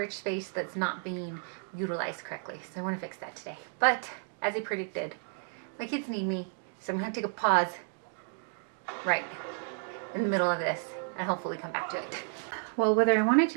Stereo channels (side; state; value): left; silent; 56 dB below the other